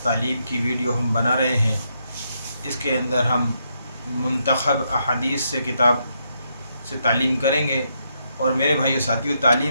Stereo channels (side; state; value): both; inverted; correlation -0.78